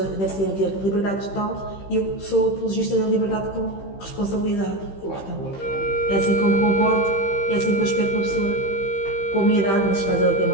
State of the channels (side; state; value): right; late; 15 ms